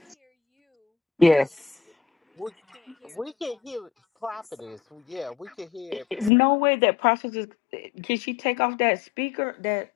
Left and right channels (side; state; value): right; drops out; at 6.3 s